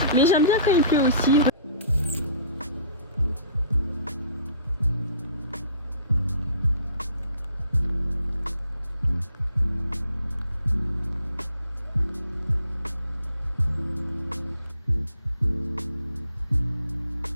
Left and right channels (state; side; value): inverted; both; correlation -0.52